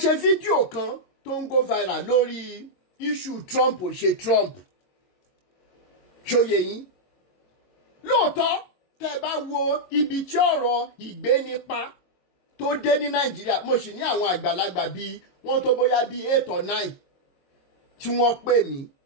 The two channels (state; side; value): late; right; 22 ms